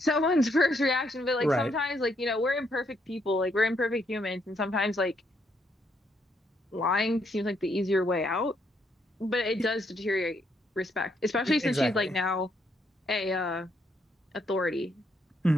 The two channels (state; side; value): normal; both; correlation 0.74